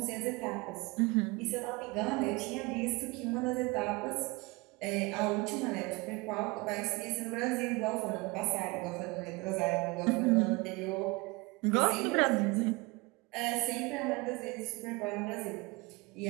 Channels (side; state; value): left; quieter; 25.3 dB